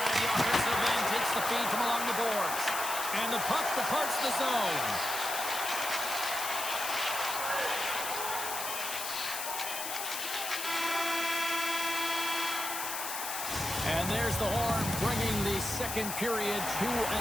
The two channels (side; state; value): left; noise; hiss, 4 dB below the sound